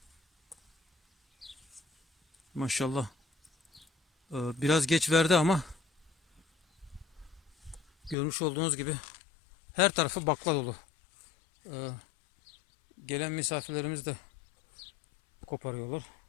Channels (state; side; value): drops out; right; at 8.2 s